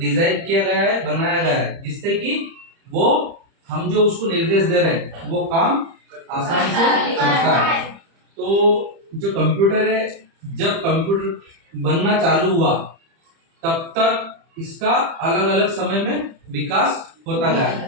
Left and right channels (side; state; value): left; late; 30 ms